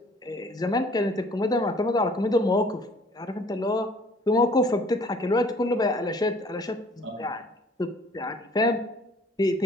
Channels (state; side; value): normal; both; correlation 0.55